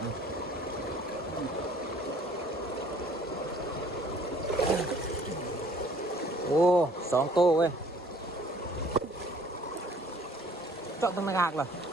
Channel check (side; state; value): both; normal; correlation 0.56